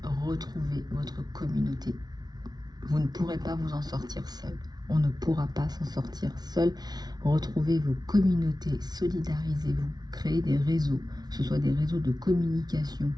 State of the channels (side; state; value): left; late; 0.19 ms